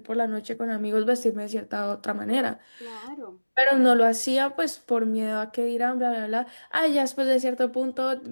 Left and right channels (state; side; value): inverted; both; correlation -1.00